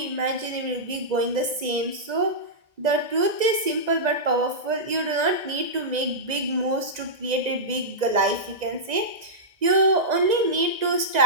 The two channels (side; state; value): left; late; 1.9 ms